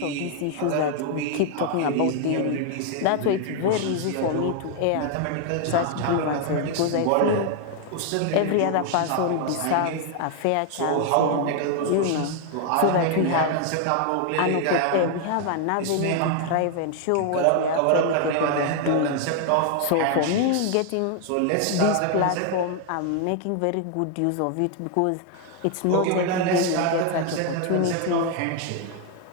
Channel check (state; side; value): different; both; correlation 0.00